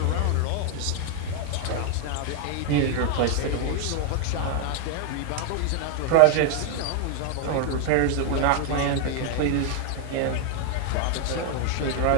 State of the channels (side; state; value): both; different; correlation 0.00